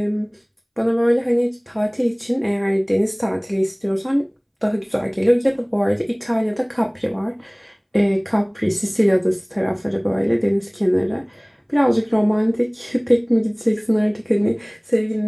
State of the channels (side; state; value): both; identical; correlation 1.00